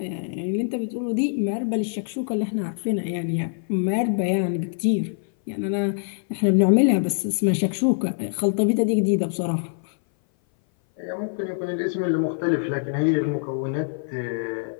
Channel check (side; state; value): right; silent; 58 dB below the other